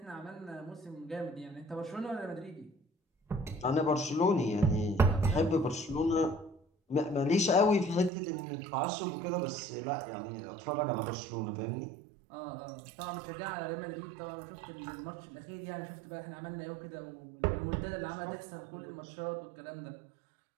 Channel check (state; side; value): drops out; left; at 8.1 s